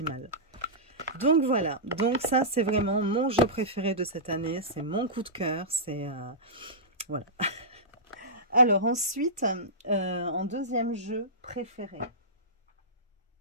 Donc voilà, donc ça c'est vraiment mon jeu préféré de cette année. C'est mon coup de cœur, c'est... voilà. Alors ensuite, en deuxième jeu préféré,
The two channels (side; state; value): both; normal; correlation -0.16